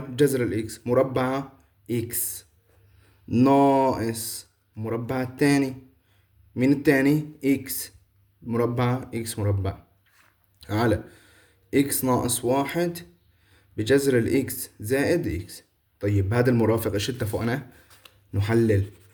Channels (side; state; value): both; identical; correlation 1.00